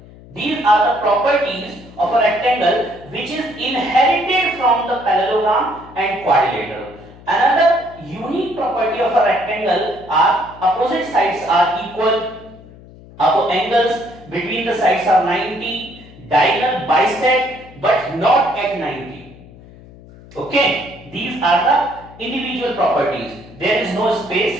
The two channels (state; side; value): noise; left; hum, 21 dB below the sound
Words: These are the properties of a rectangle which is inherited from the parallelogram and quadrilateral. Another unique property of a rectangle are opposite sides are equal, angles between the sides are 90, diagonal bisect but not at 90. Okay, these are the individual properties. There is no